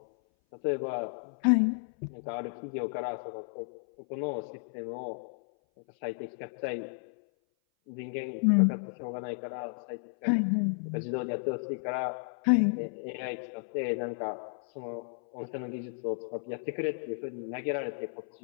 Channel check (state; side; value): silent; right; 56 dB below the other